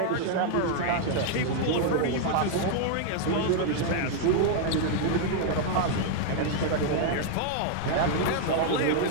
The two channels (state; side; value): different; both; correlation 0.00